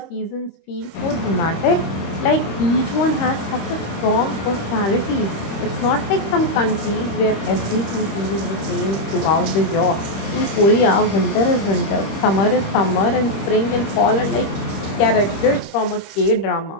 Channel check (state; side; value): late; right; 25 ms